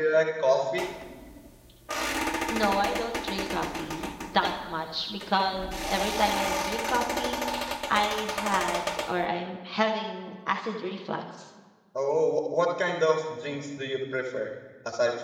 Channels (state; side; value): identical; both; correlation 1.00